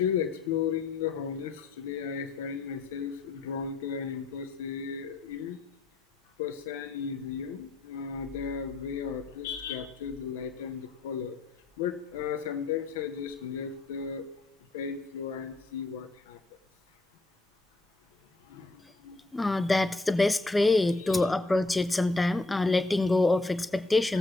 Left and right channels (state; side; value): quieter; right; 3.3 dB